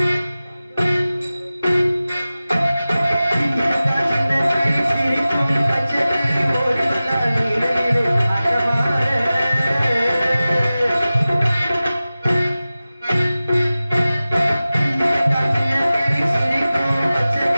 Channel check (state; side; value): inverted; both; correlation -0.96